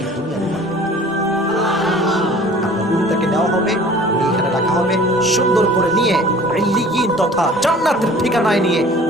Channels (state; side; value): normal; both; correlation 0.47